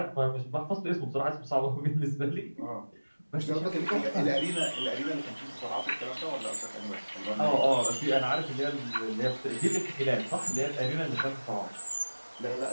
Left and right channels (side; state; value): both; inverted; correlation -1.00